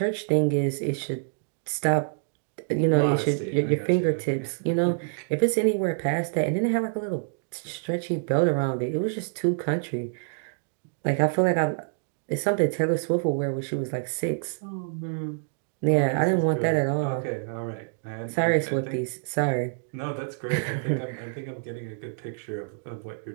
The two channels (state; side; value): silent; left; digital silence